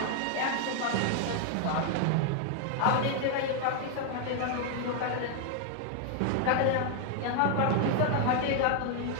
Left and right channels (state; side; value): different; both; correlation 0.00